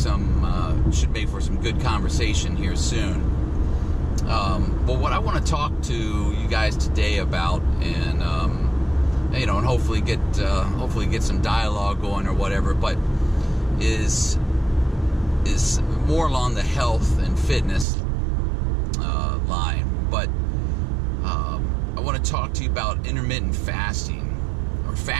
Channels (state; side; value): drops out; left; at 17.9 s